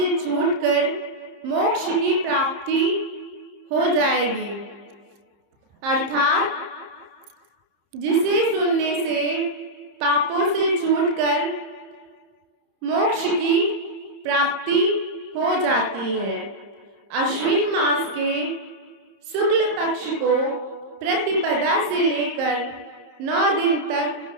छूटकर मोक्ष की प्राप्ति हो जाएगी। अर्थात जिसे सुनने से पापों से छूटकर मोक्ष की प्राप्ति हो जाती है। अश्विन मास के शुक्ल पक्ष को प्रतिपदा से लेकर 9 दिन तक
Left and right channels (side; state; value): left; late; 30 ms